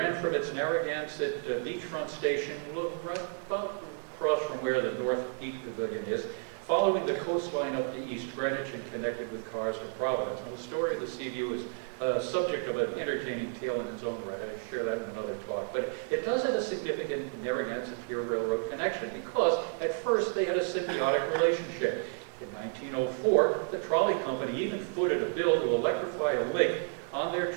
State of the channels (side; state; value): left; silent; 57 dB below the other